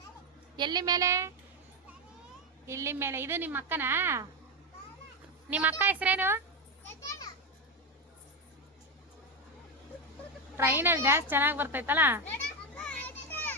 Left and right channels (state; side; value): normal; both; correlation 0.10